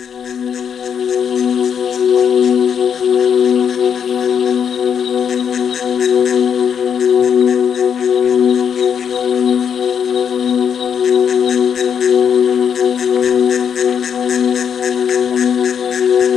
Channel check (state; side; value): quieter; right; 7.7 dB